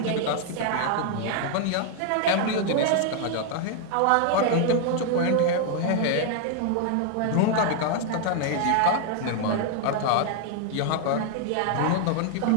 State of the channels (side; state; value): both; different; correlation 0.00